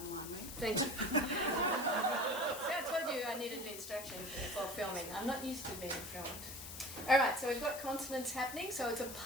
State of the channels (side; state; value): left; noise; hiss, 10 dB below the sound